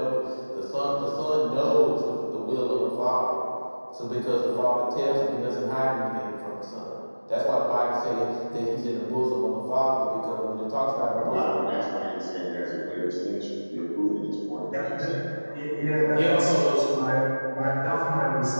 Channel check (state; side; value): inverted; both; correlation -1.00